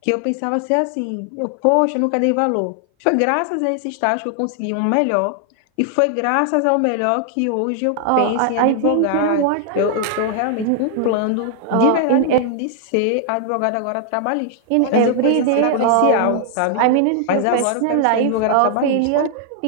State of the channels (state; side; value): different; both; correlation 0.00